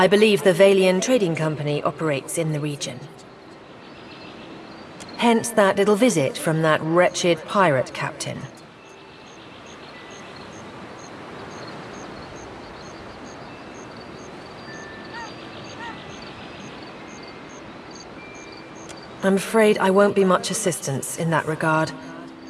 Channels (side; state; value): both; identical; correlation 1.00